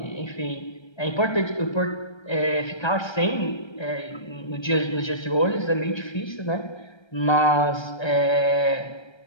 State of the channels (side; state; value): right; late; 1.3 ms